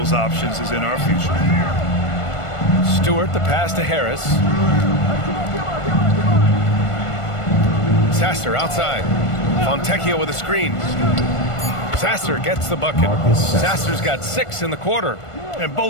options is in our future. Stewart, the pass to Harris. Sasser outside. Fontecchio with a screen. Sasser gets the bucket. Sasser's got 6 in the quarter. And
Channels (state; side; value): late; right; 1.5 ms